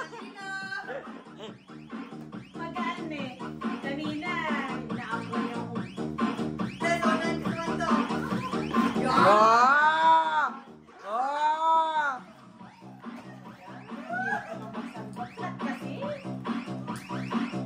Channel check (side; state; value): both; identical; correlation 1.00